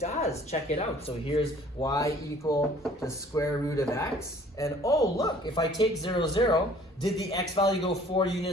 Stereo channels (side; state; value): both; normal; correlation 0.54